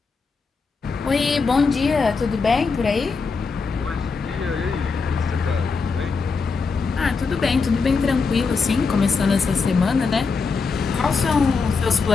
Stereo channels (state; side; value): quieter; right; 4.7 dB